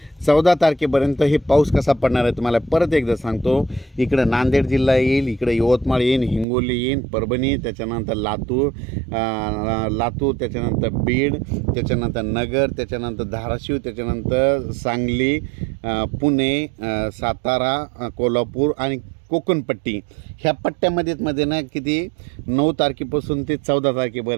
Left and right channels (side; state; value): left; drops out; at 6.5 s